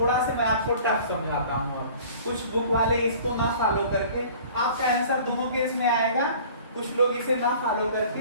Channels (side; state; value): both; inverted; correlation -0.47